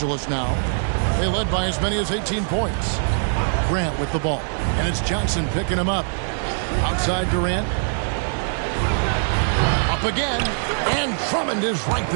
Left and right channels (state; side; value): silent; left; digital silence